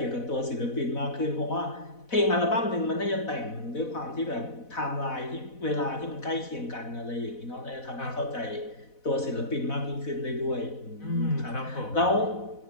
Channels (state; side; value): late; right; 4.1 ms